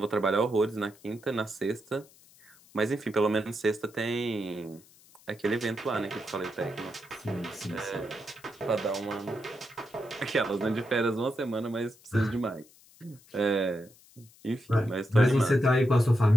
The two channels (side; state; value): left; noise; hiss, 26 dB below the sound